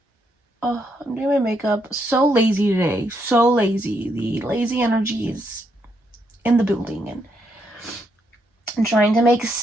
I'm doing my makeup. So lazy today. So lazy. The lazy energy is in the building, and I'm trying to make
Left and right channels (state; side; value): normal; both; correlation 0.77